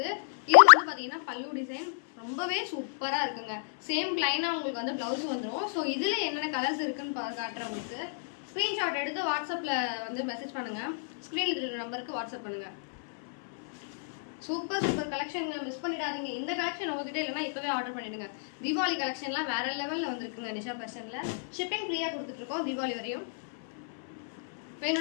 இது வந்து பாத்தீங்கன்னா பல்லு டிசைன் ரொம்பவே சூப்பரா இருக்குங்க. சேம் பிளைனா உங்களுக்கு வந்து பிளவுஸ் வந்துடும். ஸோ இதுல என்னென்ன கலர்ஸ் இருக்குன்னு காட்டுறேன் உங்களுக்கு. ஸ்கிரீன்ஷாட் எடுத்து வாட்ஸ்அப்ல வந்து மெசேஜ் பண்ணுங்க. ஸ்கிரீன்ல இருக்கிற நம்பருக்கு வாட்ஸ்அப் பண்ணுங்க. சூப்பர் கலெக்ஷன், மிஸ் பண்ணிடாதீங்க. இந்த கலெக்ஷன் உங்ககிட்ட இல்லைன்னா இப்பவே ஆர்டர் பண்ணிடுங்க. தீபாவளி கலெக்ஷன்லாம் வேற லெவல்ல வந்திருக்குங்க. நிஷா ஃபேஷன்ல ஷிப்பிங் ஃப்ரீயா கொடுத்துட்டு இருக்கோம் தீபாவளி வரையும்.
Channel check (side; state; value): right; silent; 57 dB below the other